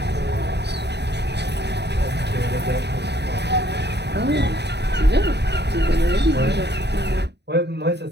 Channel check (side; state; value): left; late; 0.49 ms